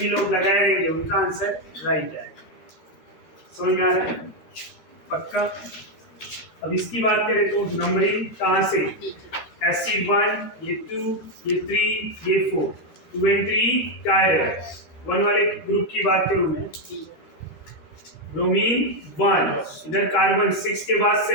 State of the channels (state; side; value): late; right; 13 ms